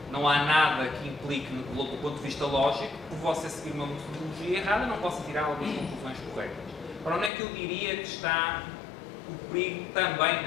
não há nada que implique, do ponto de vista lógico, por você seguir uma metodologia errada, não possa tirar algumas conclusões corretas. Ora, onde é que eu diria que está o perigo também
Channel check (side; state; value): right; drops out; at 7.3 s